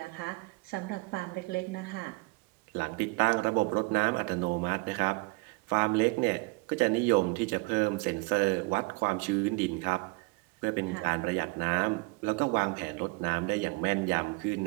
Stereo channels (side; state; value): left; quieter; 27.0 dB